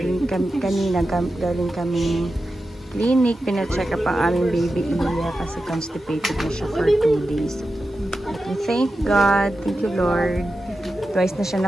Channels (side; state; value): both; normal; correlation 0.91